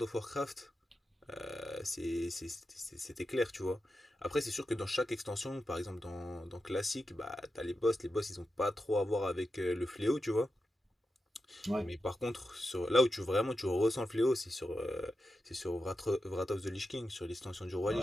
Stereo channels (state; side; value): normal; both; correlation 0.90